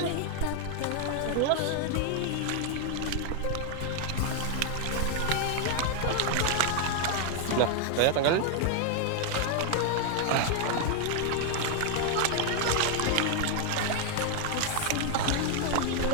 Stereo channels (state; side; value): different; both; correlation 0.00